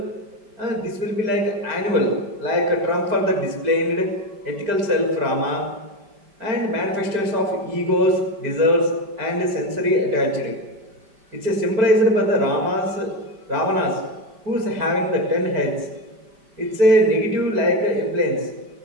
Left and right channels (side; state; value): left; late; 5.1 ms